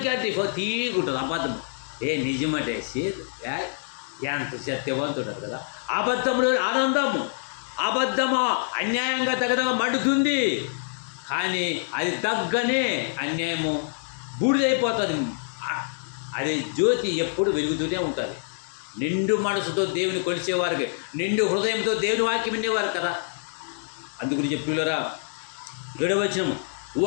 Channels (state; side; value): silent; right; digital silence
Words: అంటే తీగుంటుంది అబద్ధం. నిజమంటే ఎంత సత్యవంతుడు కదా. అబద్ధంలో ఆనందము, అబద్ధము అన్యాయంగా తగదగా మండుతుంది, కానీ అది తగ్గనే అన్యాయము బూడిదైపోతుంది. అది జ్యోతి ఎప్పుడు వెలుగుతూనే ఉంటుంది. నిండు మనసుతో దేవుని కొలిచేవారికి, నిండు హృదయంతో దేవుని వాక్యం వినేవారు కదా. అందుగురించి పిల్లరా 7వ వచనము,